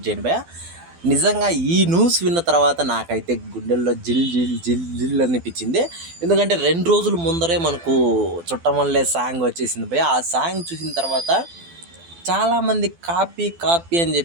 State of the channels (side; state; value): left; late; 12 ms